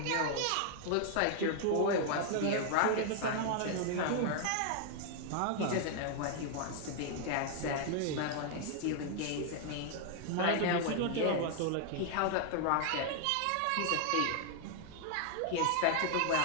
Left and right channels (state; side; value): different; both; correlation 0.00